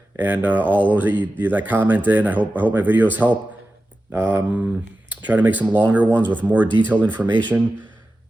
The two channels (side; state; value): both; normal; correlation 0.93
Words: and all those that comment in. I hope my videos help. Try to make some longer ones with more detailed information,